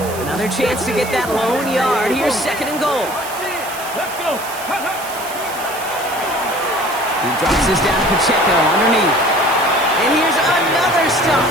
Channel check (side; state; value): right; noise; hiss, 13 dB below the sound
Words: Another chance to get that lone yard. Here's 2nd and goal. Let's go. He drops this down to Pacheco underneath. And here's another stop